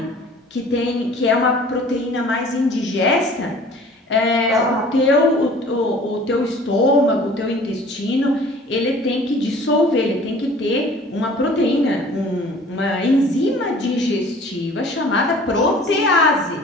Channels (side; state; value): both; normal; correlation 0.49